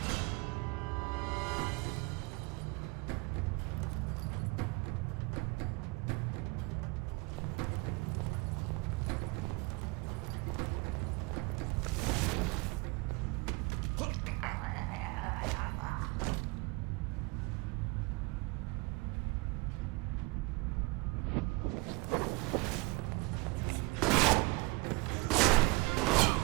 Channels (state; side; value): quieter; left; 25.8 dB